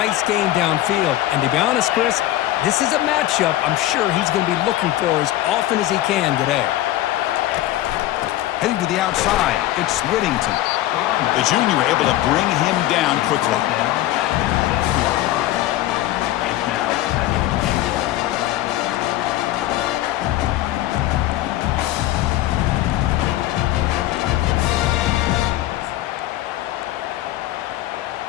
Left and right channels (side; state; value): right; quieter; 14.8 dB